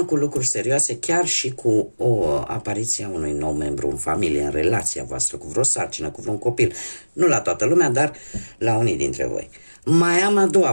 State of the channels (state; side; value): inverted; both; correlation -1.00